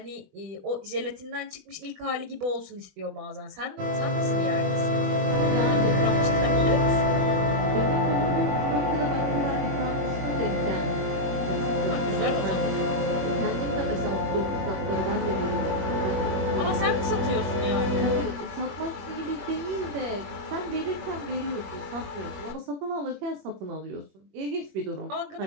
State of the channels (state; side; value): late; left; 21 ms